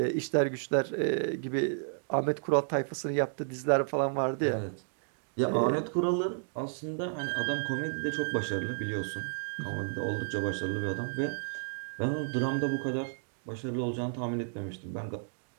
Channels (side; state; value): left; silent; digital silence